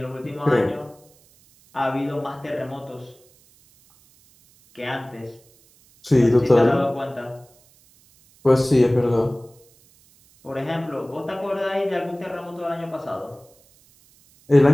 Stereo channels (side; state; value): right; noise; hiss, 30 dB below the sound